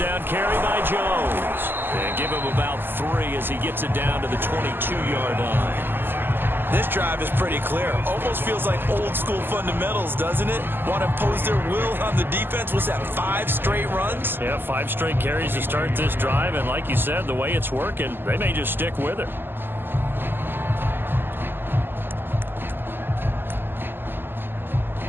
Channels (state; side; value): late; left; 0.097 ms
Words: carry by Jones. And give him about 3 as he gets it down to the 22-yard line. This drive is pretty clear. Almost feels like old school fundamentals, doesn't it? Want to impose their will on the defense. Was that 5 straight runs? Yeah, 5 straight carries to start this drive. And like you said, the way it's working, they may just stick with it.